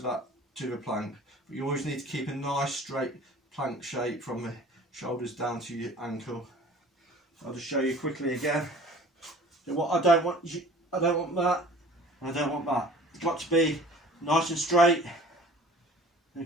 the plank. But you always need to keep a nice straight plank shape from the shoulders down to your ankle. I'll just show you quickly again. So what I don't want that, and I don't want that. It's got to be nice and straight.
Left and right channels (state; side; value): normal; both; correlation 0.47